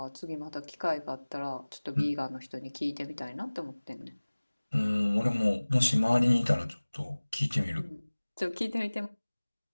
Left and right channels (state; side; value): inverted; both; correlation -1.00